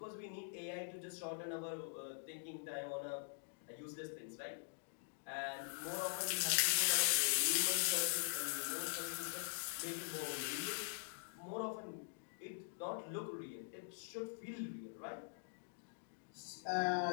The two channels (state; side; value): silent; right; digital silence